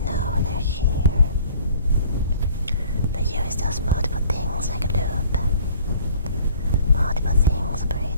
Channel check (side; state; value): both; inverted; correlation -0.52